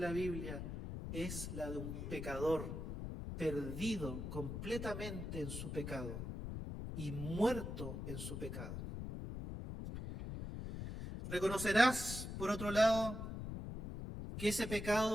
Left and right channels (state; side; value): noise; left; rumble, 6 dB below the sound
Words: Biblia, es la de un pecador perdido completamente en su pecado y muerto en su pecado. Reconocerás, por otro lado, que ese